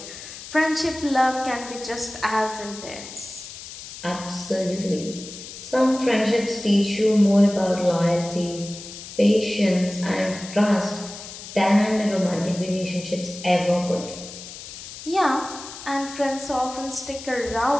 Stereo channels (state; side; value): noise; left; hiss, 13 dB below the sound